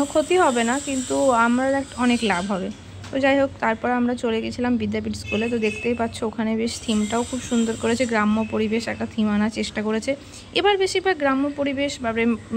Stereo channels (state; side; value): identical; both; correlation 1.00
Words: ক্ষতি হবে না, কিন্তু আমরা অনেক লাভ হবে। তো যাই হোক, তারপর আমরা চলে গেছিলাম বিদ্যাপীঠ স্কুলে। তো দেখতেই পাচ্ছ ওখানে বেশ থিমটাও খুব সুন্দর করেছে, গ্রাম্য পরিবেশ একটা থিম আনার চেষ্টা করেছে এবার, বেশিরভাগ গ্রাম্য পরিবেশ বা